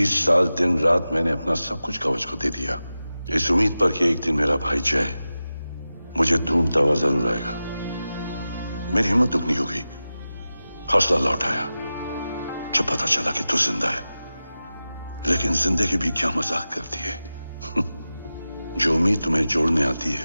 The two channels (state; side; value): inverted; both; correlation -0.94